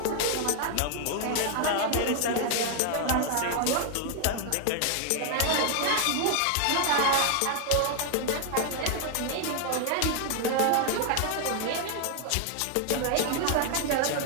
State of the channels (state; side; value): different; both; correlation 0.00